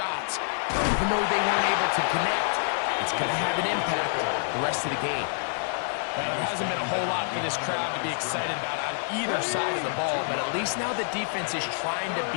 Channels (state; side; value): silent; right; digital silence